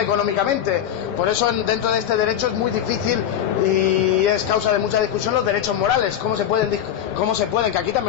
económicamente. Por eso dentro de este derecho es muy difícil y es causa de mucha discusión los derechos morales, cómo se pueden, que aquí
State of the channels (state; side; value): quieter; right; 9.9 dB